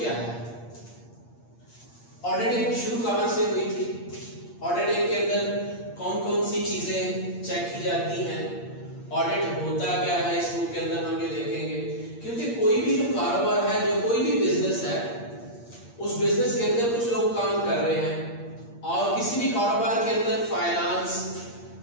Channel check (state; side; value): late; right; 8.6 ms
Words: है। ऑडिटिंग शुरू कहां से हुई थी, ऑडिटिंग के अंदर कौन कौन सी चीजें चेक की जाती हैं, ऑडिट होता क्या है, इस बुक के अंदर हम ये देखेंगे। क्योंकि कोई भी जो कारोबार है, जो कोई भी बिजनेस है, उस बिजनेस के अंदर कुछ लोग काम कर रहे हैं और किसी भी कारोबार के अंदर फाइनेंस,